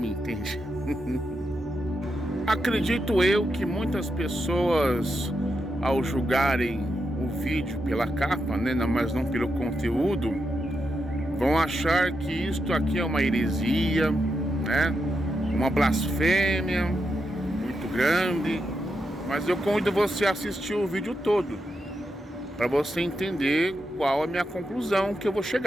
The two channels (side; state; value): both; normal; correlation 0.85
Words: entende. Acredito eu que muitas pessoas, ao julgarem o vídeo pela capa, né, mas não pelo conteúdo, vão achar que isto aqui é uma heresia, né, uma blasfêmia muito grande. Mas eu convido você a assistir o vídeo todo, para você entender qual é a minha conclusão que eu vou